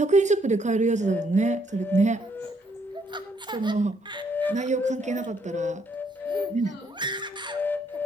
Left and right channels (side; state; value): both; normal; correlation 0.70